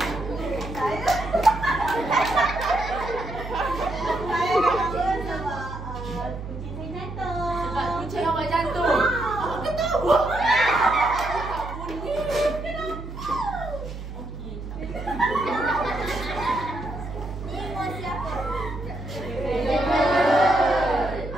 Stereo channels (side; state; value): right; noise; hum, 9 dB below the sound